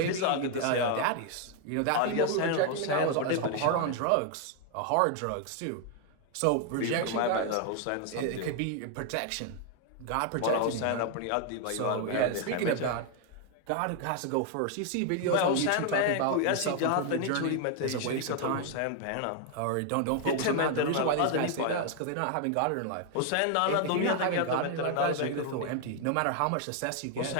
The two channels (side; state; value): both; different; correlation 0.00